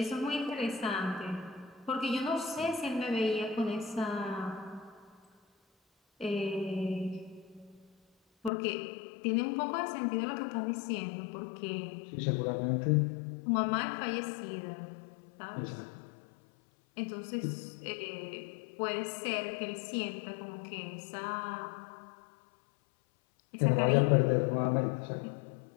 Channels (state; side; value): drops out; right; at 8.5 s